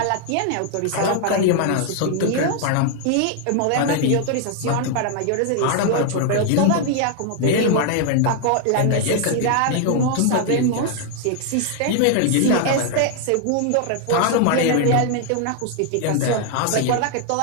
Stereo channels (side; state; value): both; different; correlation 0.00